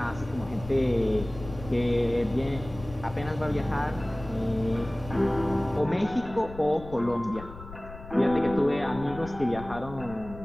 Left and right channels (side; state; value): left; noise; rumble, 14 dB below the sound